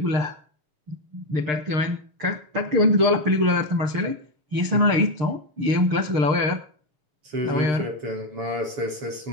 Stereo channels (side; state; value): left; late; 6.6 ms